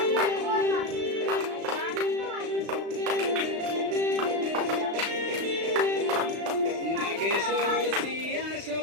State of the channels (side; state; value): left; late; 36 ms